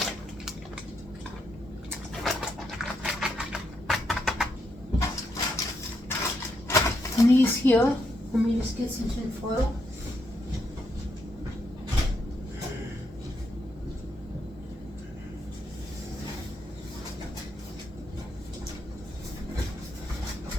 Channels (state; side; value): normal; both; correlation 0.79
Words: And these here, let me just get some tin foil.